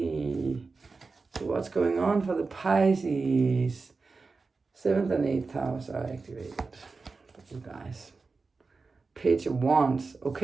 So what's going on for the Pisces? 7th and 8th house are activated for you guys. Page of Wands.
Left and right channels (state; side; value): quieter; left; 4.2 dB